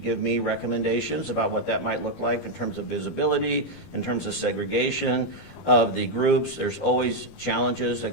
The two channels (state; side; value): late; right; 12 ms